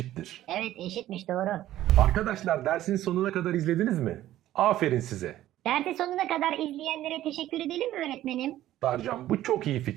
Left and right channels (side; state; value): left; quieter; 13.8 dB